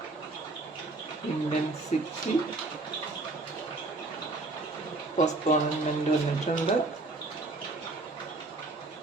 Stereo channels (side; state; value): left; quieter; 3.2 dB